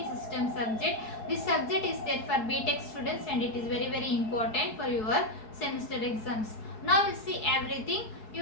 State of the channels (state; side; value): late; right; 4.7 ms